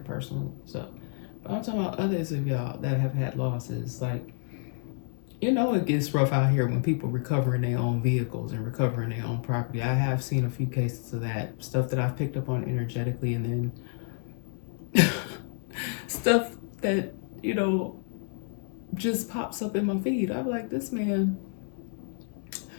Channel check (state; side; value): silent; right; 58 dB below the other